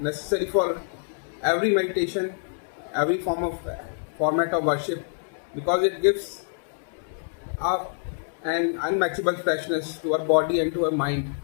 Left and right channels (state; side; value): silent; right; digital silence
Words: for every meditation, every format of worship, because it gives an unmatchable freshness to our body and to our mind.